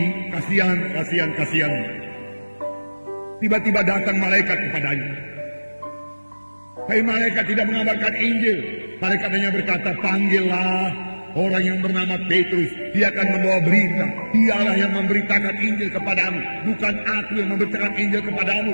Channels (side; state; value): both; inverted; correlation -1.00